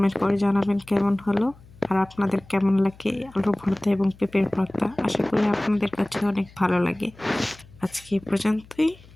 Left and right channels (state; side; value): noise; left; hum, 24 dB below the sound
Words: করে জানাবেন কেমন হলো, আর আপনাদের কেমন লাগে আলুর ভর্তা এবং পেঁপের ভর্তা। আশা করি আপনাদের কাছে অনেক ভালো লাগে। আজকে এই পর্যন্তই।